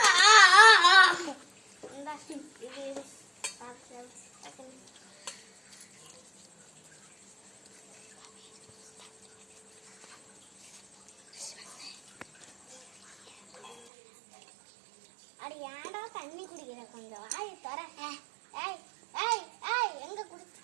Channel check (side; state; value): left; drops out; at 13.9 s